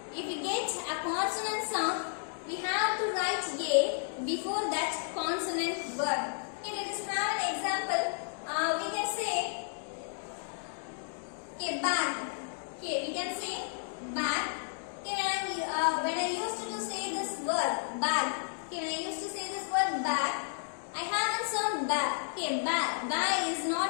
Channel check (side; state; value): right; silent; digital silence